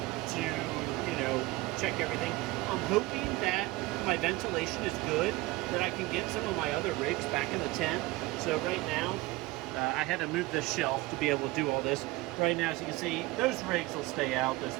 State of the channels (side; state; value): left; quieter; 20.4 dB